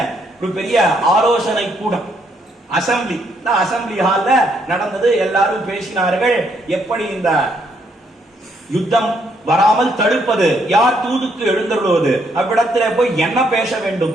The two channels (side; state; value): both; normal; correlation 0.72